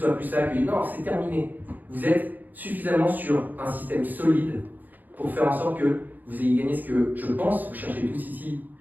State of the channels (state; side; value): late; left; 0.084 ms